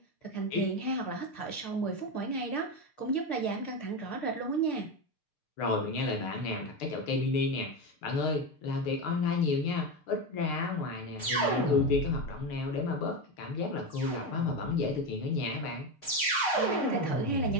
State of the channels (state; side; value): late; right; 6.6 ms